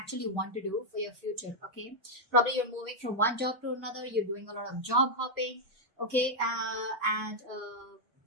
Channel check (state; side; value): normal; both; correlation -0.02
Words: want to do for your future, okay? Probably you're moving from one job to another, you're doing a lot of job hopping, okay?